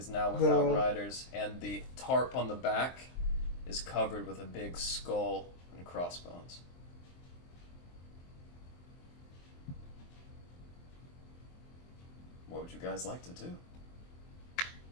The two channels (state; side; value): late; right; 23 ms